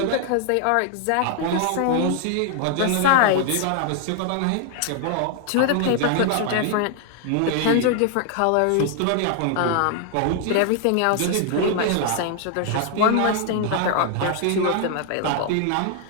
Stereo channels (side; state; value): both; different; correlation 0.00